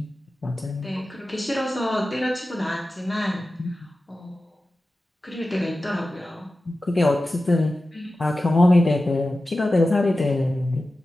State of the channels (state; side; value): normal; both; correlation 0.94